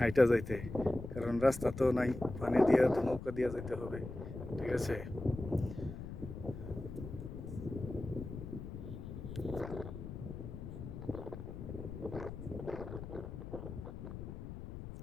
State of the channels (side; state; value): left; noise; rumble, 9 dB below the sound